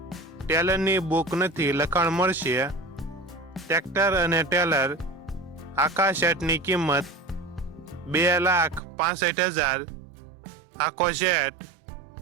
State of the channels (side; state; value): left; drops out; at 8.8 s